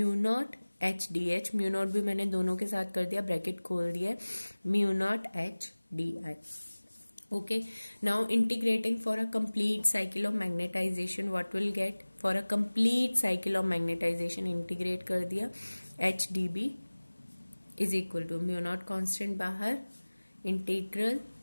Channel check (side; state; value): both; inverted; correlation -1.00